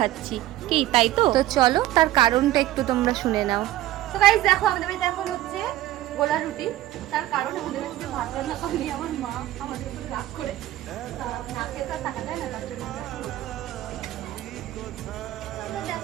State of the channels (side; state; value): left; quieter; 14.7 dB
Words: কি তাই তো? তো চলো তার কারণটা একটু তোমরা শুনে নাও। তো গাইস দেখো, আমাদের বাড়িতে এখন হচ্ছে গোলা রুটি। তার কারণ আমাদের বাড়িতে ভাত রান্না করেনি আমার মা, আমাদের উপরে রাগ করে না খেয়ে তো থাকা যায় না, তার জন্য